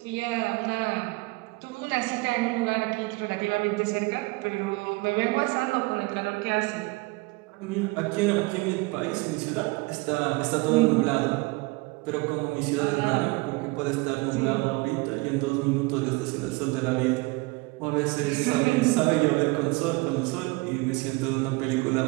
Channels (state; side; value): quieter; left; 24.8 dB